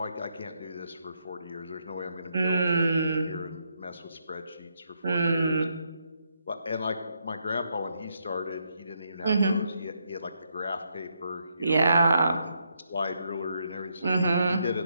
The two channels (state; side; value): inverted; both; correlation -0.78